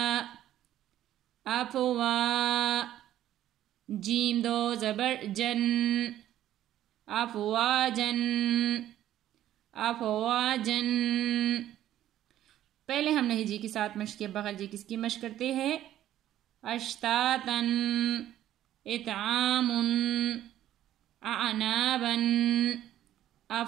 افوا، جیم دو زبر جن، افواجن، افواجن۔ پہلے ہم نے ہجی کے ساتھ مشق کیا، بغیر جی کس کی مشق کرتے ہیں؟ اشتاتن، اتعامن، اعنابن،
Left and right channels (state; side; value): quieter; left; 12.5 dB